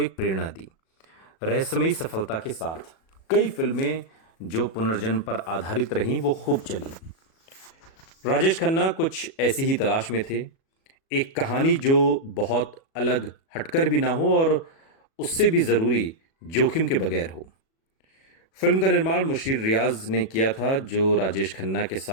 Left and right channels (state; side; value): late; right; 37 ms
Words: प्रेरणा दी। रहस्यमयी सफलता के साथ कई फिल्में जो पुनर्जन्म पर आधारित रहीं वो खूब चली। राजेश खन्ना कुछ ऐसी ही तलाश में थे, एक कहानी जो बहुत अलग हटकर भी ना हो और उससे भी जरूरी जोखिम के बगैर हो। फिल्म का निर्माण मुशीर रियाज ने किया था, जो राजेश खन्ना के